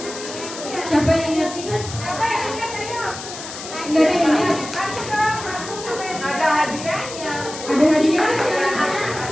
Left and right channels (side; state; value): left; noise; hiss, 11 dB below the sound